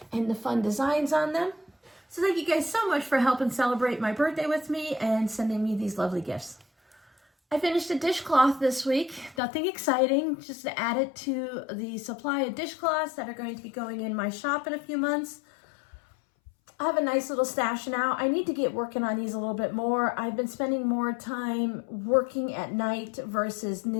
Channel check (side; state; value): right; drops out; at 9.4 s